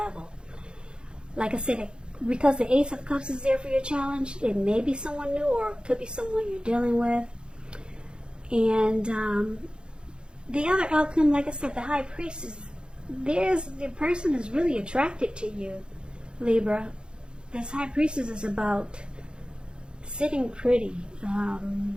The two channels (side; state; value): left; late; 0.051 ms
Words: Like I said, because the Ace of Cups is there for your challenge, it may be someone new or it could be someone you're dealing with. And the other outcome, like I said, the High Priestess, the person is really attracted to you, Libra. This High Priestess is about sitting pretty.